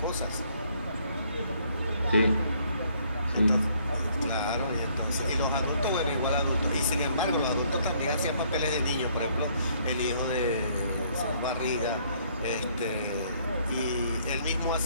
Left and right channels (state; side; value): inverted; both; correlation -0.64